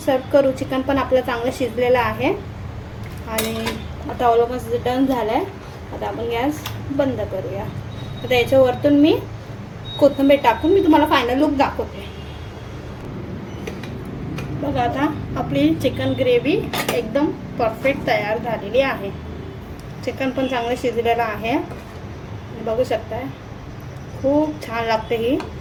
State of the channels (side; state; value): both; identical; correlation 1.00